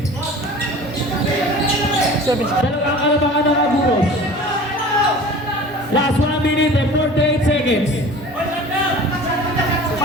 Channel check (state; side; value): normal; both; correlation 0.41